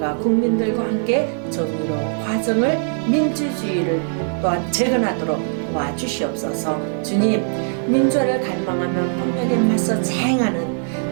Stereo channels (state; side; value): silent; left; digital silence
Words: 국민들과 함께 정의로 과정을 민주주의를 또한 재건하도록 도와주시옵소서. 주님, 민주화를 갈망하면 폭력에 맞서